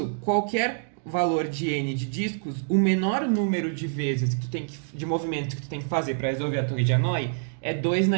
qualquer valor de n de discos, o menor número de vezes que tu tem de movimentos que tu tem que fazer para resolver a torre de Hanoi é 2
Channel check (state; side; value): silent; left; digital silence